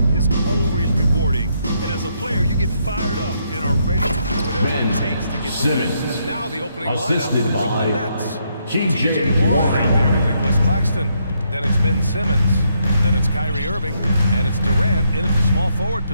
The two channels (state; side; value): inverted; both; correlation -0.75